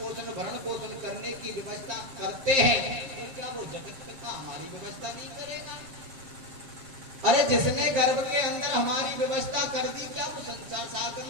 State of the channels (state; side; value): late; left; 7.1 ms